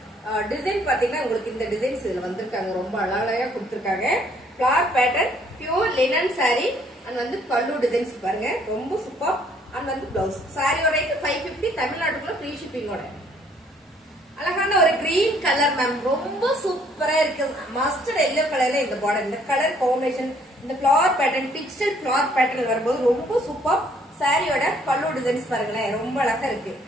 டிசைன் பாத்தீங்கன்னா உங்களுக்கு இந்த டிசைன்ஸ் இதுல வந்திருக்காங்க. ரொம்ப அழகா கொடுத்துருக்காங்க. Flower pattern pure linen sorry and வந்து பல்லு டிசைன்ஸ் பாருங்க ரொம்ப சூப்பர். அண்ட் வந்து பிளவுஸ் சாரியோட ரேட் 550 தமிழ்நாட்டுக்குள்ள ஃப்ரீ ஷிப்பிங்கோட. அழகான ஒரு கிரீன் கலர் மேம் ரொம்ப சூப்பரா இருக்கு. மஸ்டர்ட் எல்லோ கலர்ல இந்த பார்டர் இந்த கலர் காம்பினேஷன் இந்த flower pattern digital flower pattern வரும்போது ரொம்ப சூப்பர். சாரியோட பல்லு டிசைன்ஸ் பாருங்களேன் ரொம்ப அழகா இருக்கு.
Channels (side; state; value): both; normal; correlation 0.63